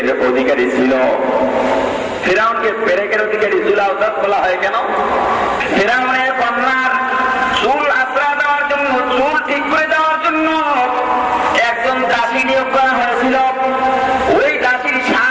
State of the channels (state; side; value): identical; both; correlation 1.00